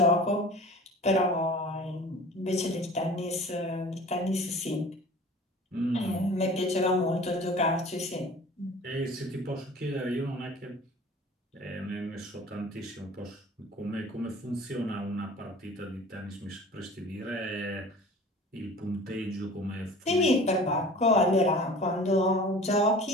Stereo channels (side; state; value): both; normal; correlation 0.43